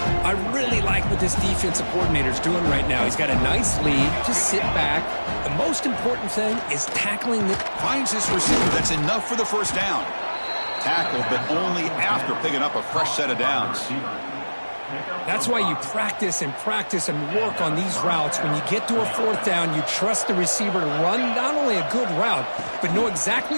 I really like what this defensive coordinator's doing right now. He's got a nice lead. Just sit back. The most important thing is tackling the... Finds his receiver. That's enough for the first down. Tackled, but only after picking up a fresh set of downs. That's why you practice and work on these routes. When you get to a 4th down, you trust the receiver to run not only a good route, but know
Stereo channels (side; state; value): both; inverted; correlation -1.00